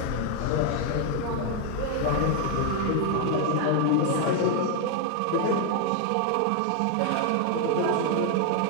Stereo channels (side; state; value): both; different; correlation 0.01